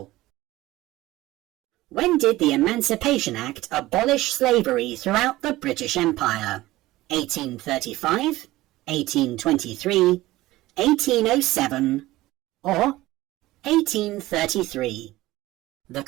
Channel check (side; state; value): left; quieter; 17.6 dB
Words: When did the Emancipation Act abolish slavery throughout the British Empire? 1835, 1823, 1807, or 1833? The